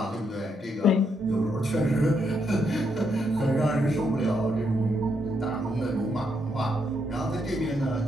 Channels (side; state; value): both; normal; correlation 0.77